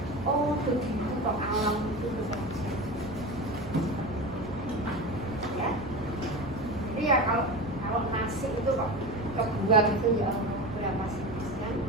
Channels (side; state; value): both; normal; correlation 0.26